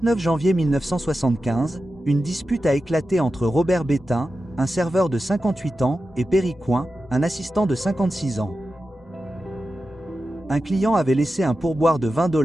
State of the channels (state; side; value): normal; both; correlation 0.92